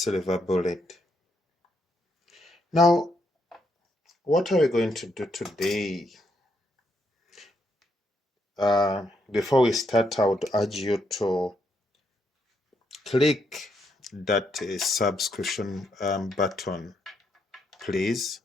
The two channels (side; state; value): both; normal; correlation 0.77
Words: Bullet. Now, what are we going to do today? Before we start, I would urge you to click that subscription button, please,